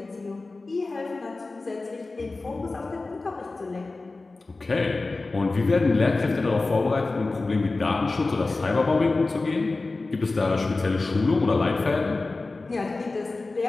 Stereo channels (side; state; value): right; quieter; 3.5 dB